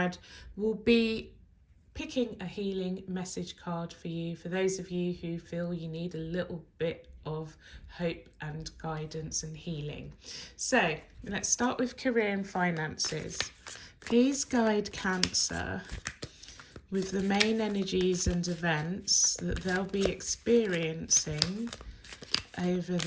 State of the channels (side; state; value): both; identical; correlation 1.00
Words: will be picking a healing message card for you, for those of you who feel you need a little bit of hope and guidance and healing. So let's start with career and finances. Please guide Cancer with the main energies and events that they'll be experiencing over